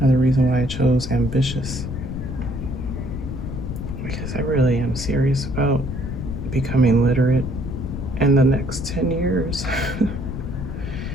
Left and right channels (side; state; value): left; noise; rumble, 6 dB below the sound